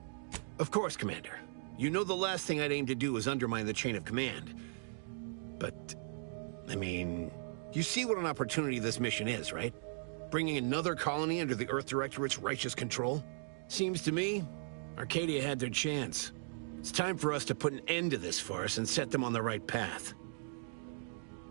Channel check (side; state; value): left; silent; digital silence